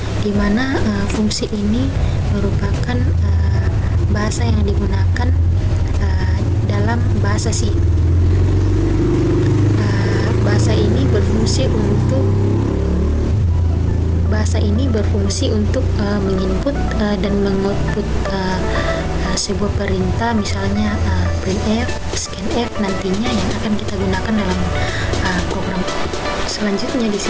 di mana fungsi ini merupakan bahasa yang digunakan dalam bahasa C. Bahasa ini berfungsi untuk menginput dan mengoutput sebuah perintah, misalnya printf, scanf nantinya yang akan kita gunakan dalam program. Selanjutnya di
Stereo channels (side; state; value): both; identical; correlation 1.00